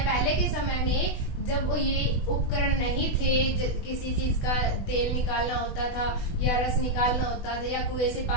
पहले के समय में, जब ये उपकरण नहीं थे, किसी चीज का तेल निकालना होता था या रस निकालना होता था या कुएं से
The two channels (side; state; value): right; late; 20 ms